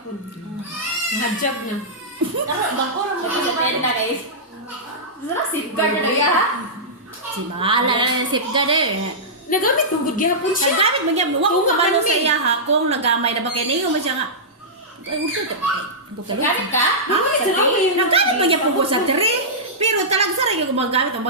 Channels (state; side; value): normal; both; correlation -0.14